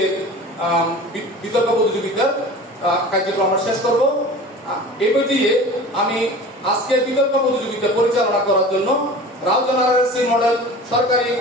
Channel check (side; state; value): both; normal; correlation 0.38